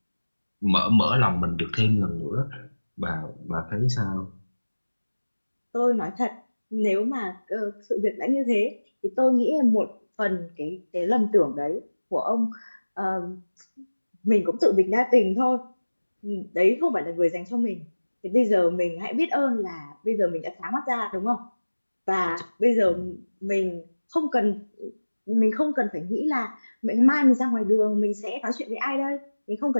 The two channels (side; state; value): both; inverted; correlation -1.00